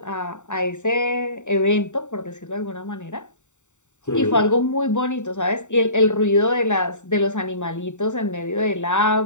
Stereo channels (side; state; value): right; late; 0.84 ms